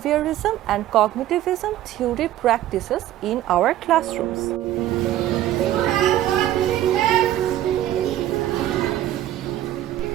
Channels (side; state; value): left; quieter; 13.1 dB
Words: and cognitivism theory practices in our classrooms.